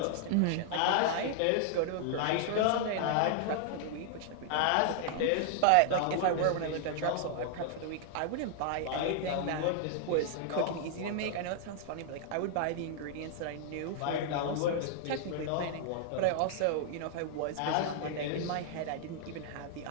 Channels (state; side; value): different; both; correlation -0.01